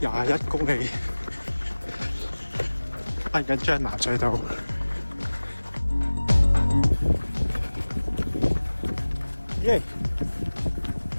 公里，行緊將南隧道。耶！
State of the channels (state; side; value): inverted; both; correlation -1.00